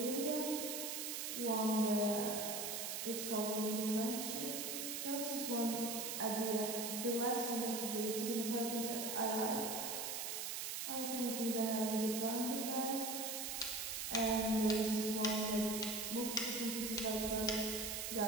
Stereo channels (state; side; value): noise; right; hiss, 3 dB below the sound